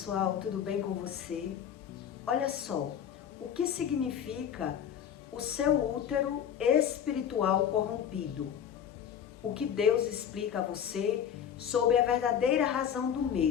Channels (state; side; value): quieter; right; 8.8 dB